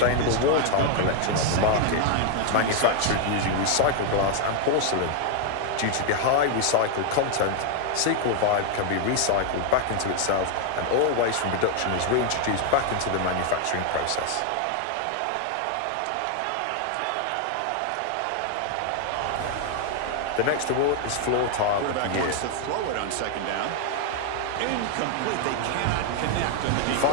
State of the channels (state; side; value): different; both; correlation 0.00